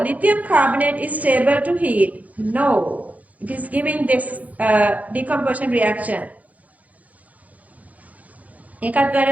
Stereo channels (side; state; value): left; late; 0.074 ms